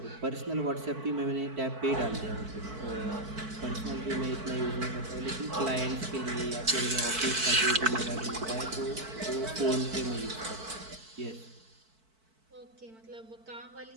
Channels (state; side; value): late; left; 4.5 ms